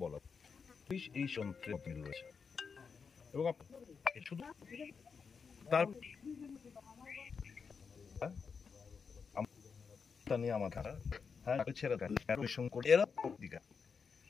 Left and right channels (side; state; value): right; quieter; 5.7 dB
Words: বলা পুলিশ এই যন্ত্রে রয়েছে এবং শুধু তার নিয়ে আমার